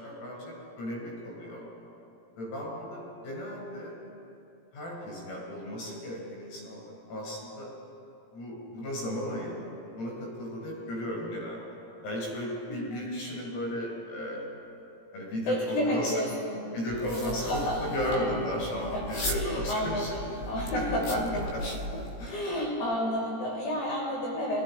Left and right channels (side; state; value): right; late; 17 ms